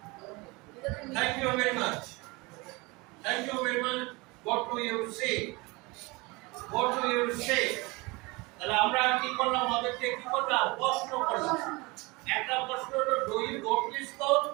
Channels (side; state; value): left; quieter; 25.0 dB